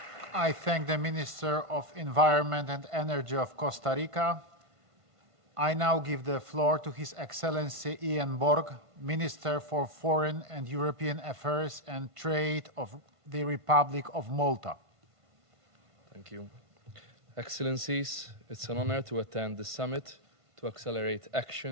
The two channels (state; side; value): late; left; 1.5 ms